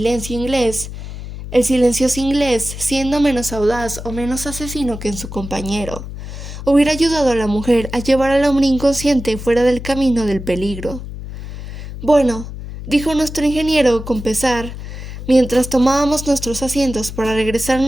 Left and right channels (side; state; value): left; noise; hum, 10 dB below the sound